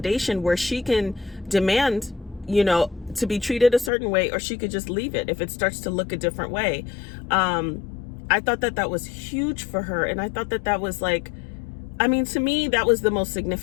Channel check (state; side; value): drops out; right; at 3.9 s